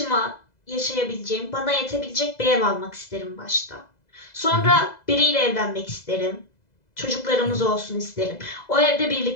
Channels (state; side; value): late; right; 2.0 ms